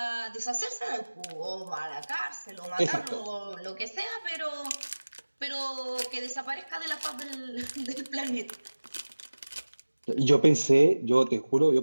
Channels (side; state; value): both; inverted; correlation -1.00